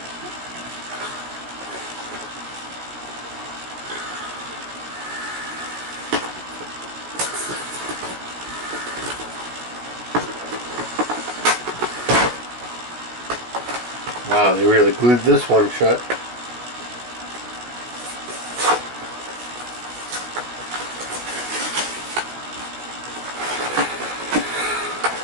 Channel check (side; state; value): left; late; 16 ms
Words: Wow, they really glued this one shut.